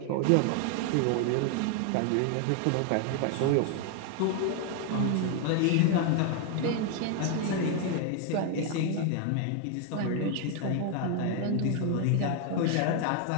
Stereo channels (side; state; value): both; different; correlation 0.01